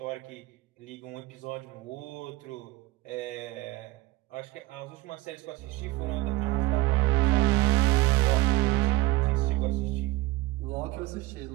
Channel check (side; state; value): left; quieter; 19.8 dB